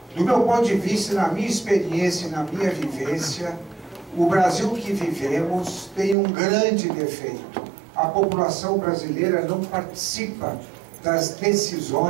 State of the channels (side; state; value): left; drops out; at 6.2 s